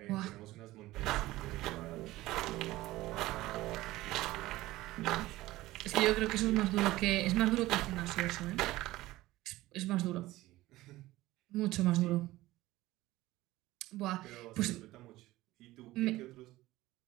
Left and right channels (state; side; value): quieter; left; 17.5 dB